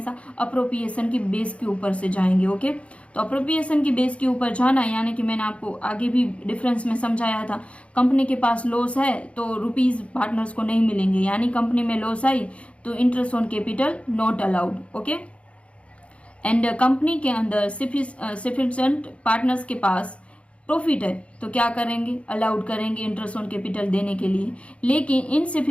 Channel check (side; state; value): right; late; 0.062 ms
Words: अप्रोप्रिएशन की बेस के ऊपर से जाएंगे। ओके, तो अप्रोप्रिएशन की बेस के ऊपर जाना, यानी कि मैंने आपको आगे भी डिफरेंस में समझाया था, कंपनी के पास लॉस है तो रुपीज पार्टनर्स को नहीं मिलेंगे, यानी कंपनी में लॉस आई तो interest on capital not allowed. Okay, and company के अंदर सफिशिएंट पार्टनर्स के पास प्रॉफिट है तो क्या करेंगे, अलाउड करेंगे इंटरेस्ट ऑन कैपिटल देने के लिए। लेकिन